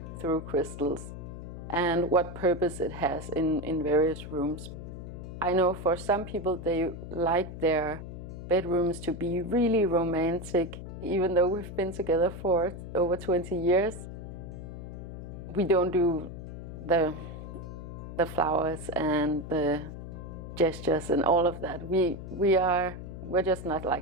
through crystals and what purpose it has in various rooms. I know for some people they like their bedrooms to be really romantic. Even though we've been together for over 20 years, we don't do the flowers and the gestures and all of that. We're just not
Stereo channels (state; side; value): noise; left; hum, 10 dB below the sound